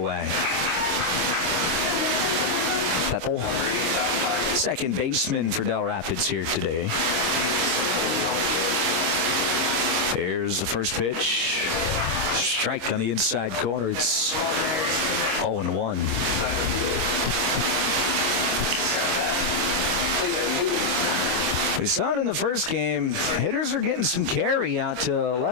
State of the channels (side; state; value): left; late; 25 ms